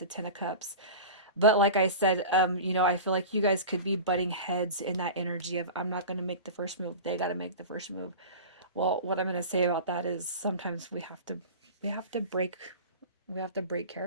Ten of Cups. But like I said, I feel like you guys could be butting heads in that energy of I'm not going to make the first move. They got to make the first move. Well, what I'm going to say about that is sometimes we have to break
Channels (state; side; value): inverted; both; correlation -0.33